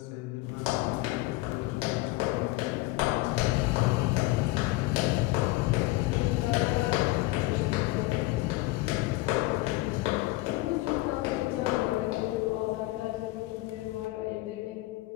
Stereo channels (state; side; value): quieter; right; 19.6 dB